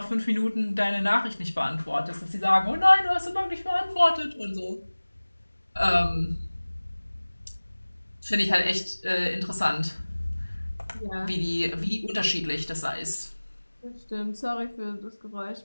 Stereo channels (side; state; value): both; inverted; correlation -1.00